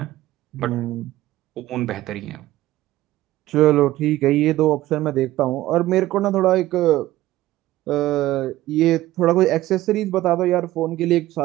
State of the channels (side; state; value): left; quieter; 15.8 dB